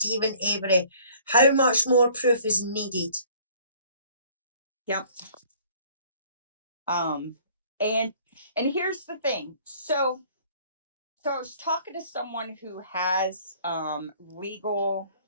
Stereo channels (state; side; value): inverted; both; correlation -0.55